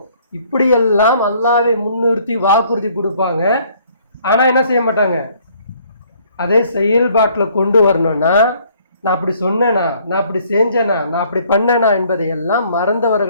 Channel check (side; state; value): both; inverted; correlation -0.61